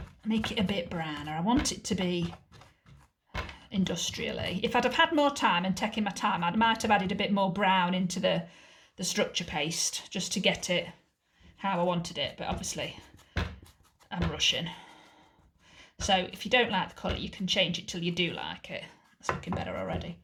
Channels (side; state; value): both; identical; correlation 1.00